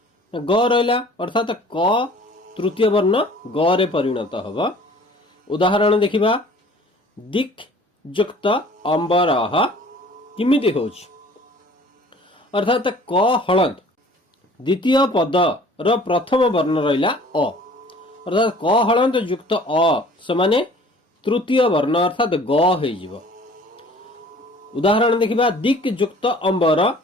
ग रहिला अर्थात क तृतीय वर्ण ग रे परिणत हब। उदाहरण देखिबा। दिक् युक्त अंबरः किमिति होछि अर्थात क हलंत द्वितीय पद र प्रथम वर्ण रहिला अ अर्थात क हलंत युक्त अ समाने तृतीय वर्ण अर्थात ग हो जिवो। उदाहरण देखिबा। दिक् युक्त अंबर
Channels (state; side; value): normal; both; correlation 0.50